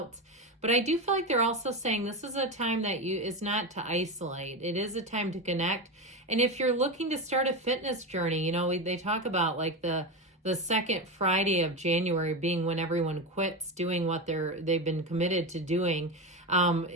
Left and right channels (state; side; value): normal; both; correlation 0.18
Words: But I do feel like they're also saying this is a time that is not to isolate. It is a time to connect. And if you're looking to start a fitness journey, they talk about like the second Friday of January being when everyone quits doing what they've been committed to doing